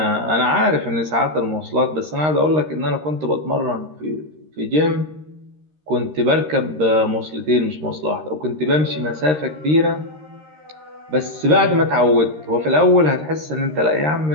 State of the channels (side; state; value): left; late; 13 ms